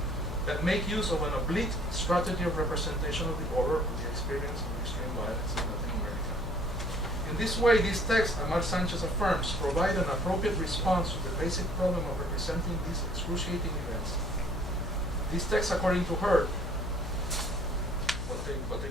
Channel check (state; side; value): noise; left; hum, 5 dB below the sound